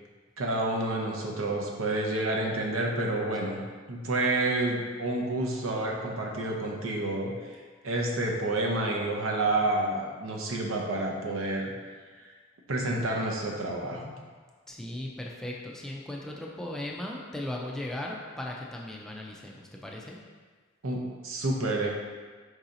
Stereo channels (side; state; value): both; normal; correlation 0.18